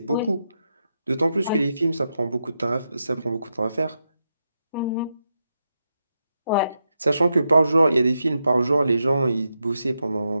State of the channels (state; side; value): inverted; both; correlation -0.85